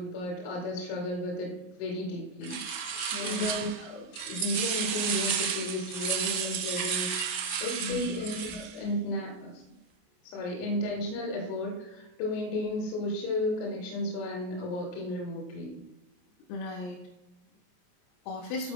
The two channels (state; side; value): late; right; 28 ms